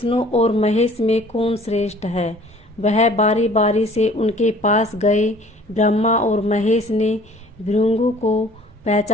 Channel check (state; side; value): normal; both; correlation 0.52